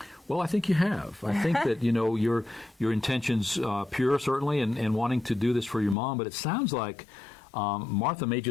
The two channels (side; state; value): right; drops out; at 6.0 s